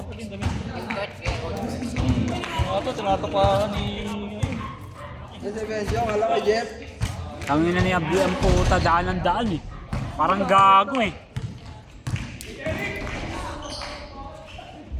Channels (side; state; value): both; identical; correlation 1.00